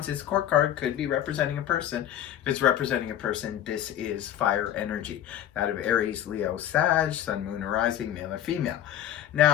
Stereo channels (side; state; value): right; quieter; 11.3 dB